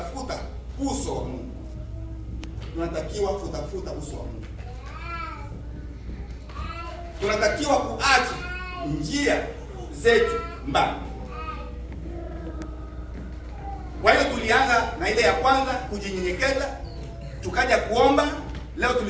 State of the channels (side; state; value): both; identical; correlation 1.00